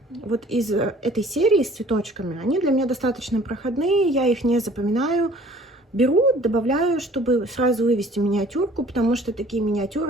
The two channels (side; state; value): both; normal; correlation 0.52